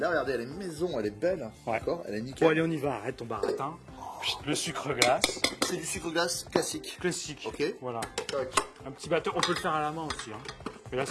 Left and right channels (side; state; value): both; identical; correlation 1.00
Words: regardez, elle est maison, elle est belle, Ouais. d'accord, elle est nickel. Bon, allez, on y va, arrête ton baratin. Le sucre glace. C'est du sucre glace classique. Classique. Ok. Voilà. Tac. Un petit batteur, on peut le faire à la main aussi. Hein. Mais là,